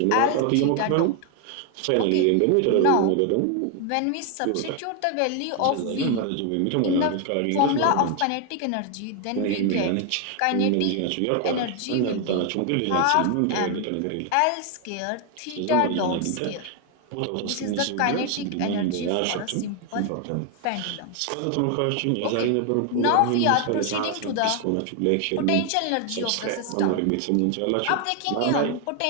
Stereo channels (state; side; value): different; both; correlation 0.01